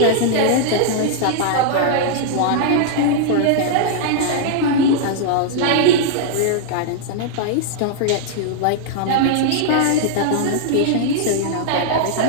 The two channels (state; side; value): different; both; correlation -0.01